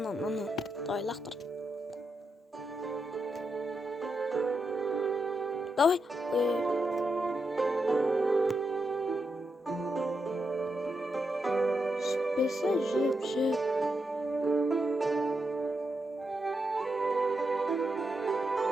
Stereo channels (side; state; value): both; normal; correlation 0.85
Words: Давай, лақтыр. Давай. Жіппесе, жіп.